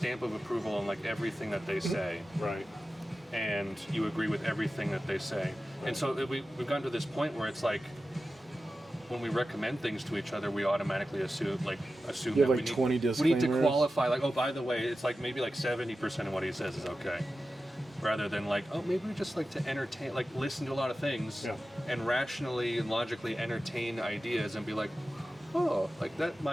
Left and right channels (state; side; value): normal; both; correlation 0.93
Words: of approval on like everything that they say. Right. And you agree with everything that they say. And so we've gotten to this point where it's like, when we recommend things to each other, we automatically assume You that have like 20 we need to disclaimers. qualify, like, oh, by the way, it's like maybe like 70% of what he says is okay. Rather than like, oh, maybe we just like to entertain, like listen to a lot of things and rationally and logically entertain ideas and be like, oh, like that